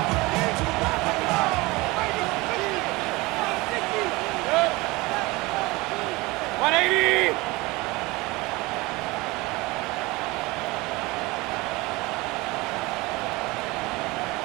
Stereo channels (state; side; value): quieter; left; 22.6 dB